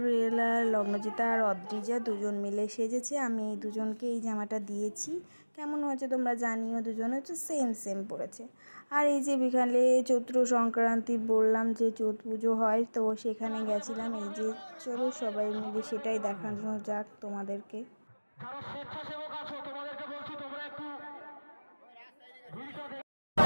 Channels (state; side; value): inverted; both; correlation -1.00